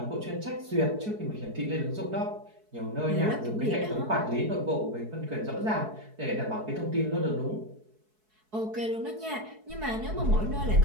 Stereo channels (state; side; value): late; left; 4.6 ms